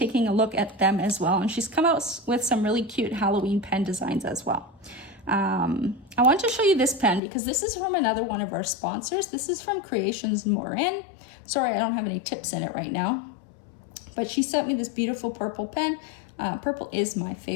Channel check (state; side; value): drops out; right; at 7.2 s